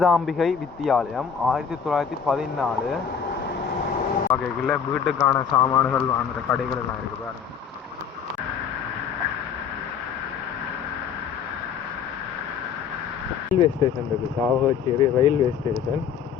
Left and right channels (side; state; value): right; quieter; 7.2 dB